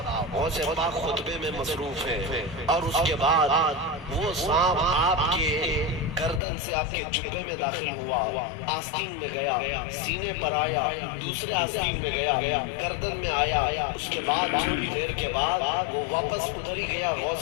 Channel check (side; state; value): right; drops out; at 6.4 s